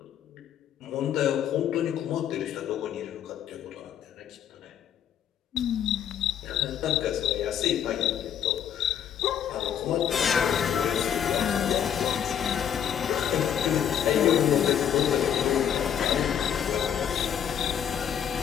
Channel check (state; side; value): quieter; right; 9.2 dB